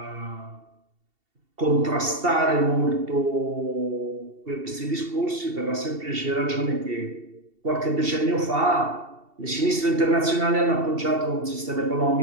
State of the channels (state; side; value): late; left; 2.7 ms